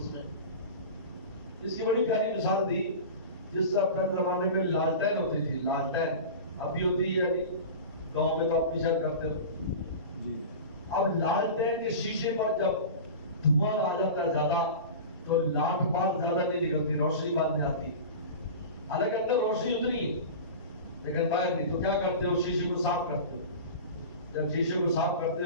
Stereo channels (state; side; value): inverted; both; correlation -0.31